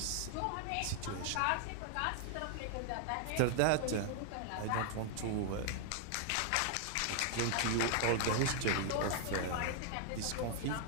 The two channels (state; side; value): different; both; correlation 0.00